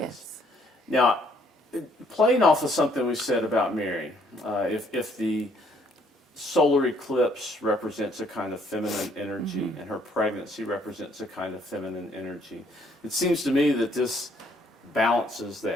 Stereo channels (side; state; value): both; normal; correlation 0.65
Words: Now, playing off of something we said about Mary, if the solar eclipse represents a kind of feminine energy and her pregnancy represents a kind of feminine energy, it seems to me that this balances